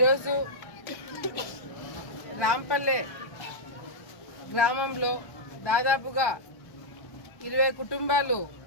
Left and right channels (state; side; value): late; right; 1.1 ms